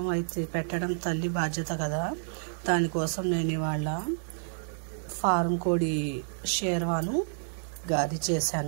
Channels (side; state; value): left; silent; digital silence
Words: అయితే పెట్టడం తల్లి బాధ్యత కదా. దానికోసం నేను ఇవాళ ఫారం కోడి షేర్వాను గారి